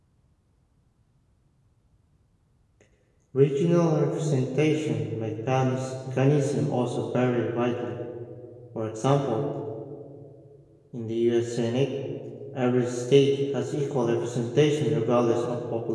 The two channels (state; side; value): identical; both; correlation 1.00